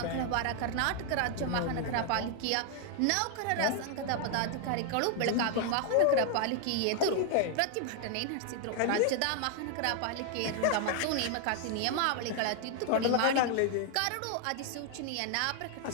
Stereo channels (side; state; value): both; different; correlation 0.00